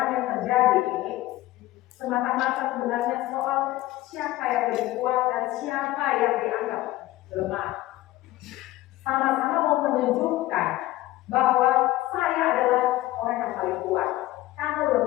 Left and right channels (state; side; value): quieter; right; 16.7 dB